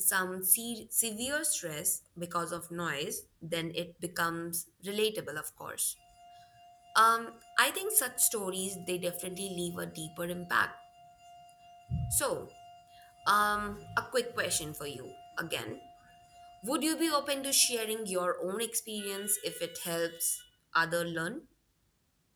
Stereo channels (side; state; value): both; identical; correlation 1.00